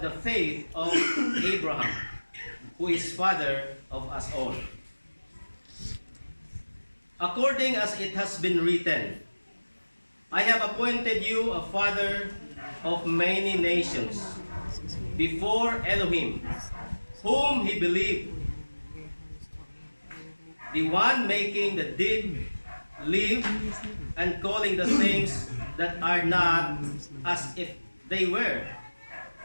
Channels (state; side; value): inverted; both; correlation -1.00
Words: the faith of Abraham, who is father of us all. According as it has been written, I have appointed you a father of many nations before Elohim, whom he believed, the one making the dead live and calling the things that are not as if they were.